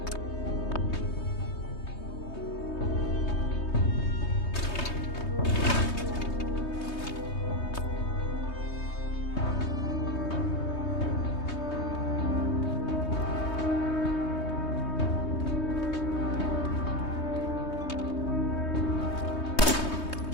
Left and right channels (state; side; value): late; right; 3.2 ms